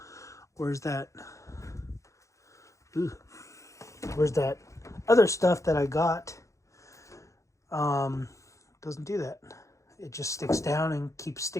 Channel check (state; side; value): late; right; 0.15 ms